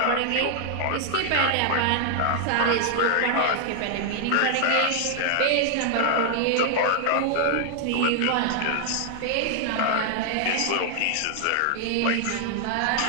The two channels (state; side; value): different; both; correlation 0.00